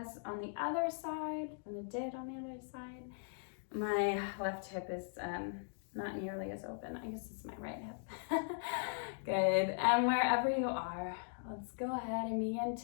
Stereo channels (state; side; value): silent; right; digital silence